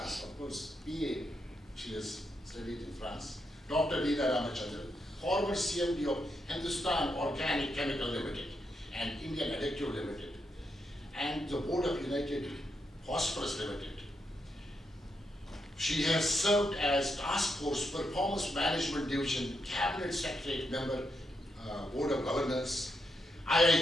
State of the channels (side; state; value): both; normal; correlation 0.82